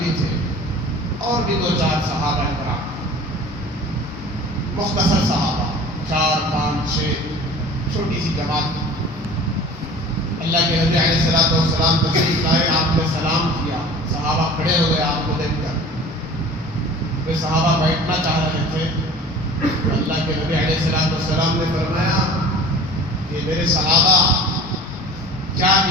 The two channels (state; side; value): normal; both; correlation 0.42